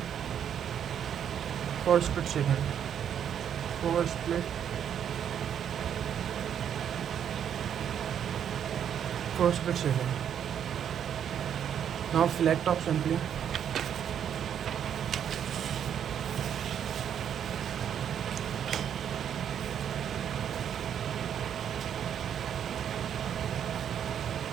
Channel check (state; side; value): quieter; left; 8.9 dB